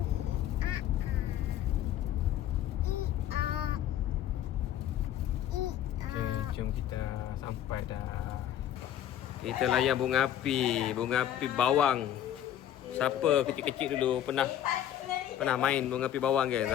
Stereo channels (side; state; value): right; quieter; 11.1 dB